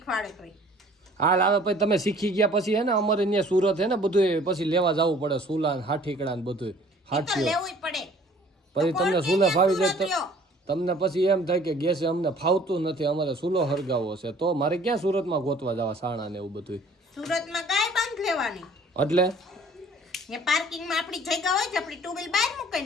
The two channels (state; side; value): normal; both; correlation 0.53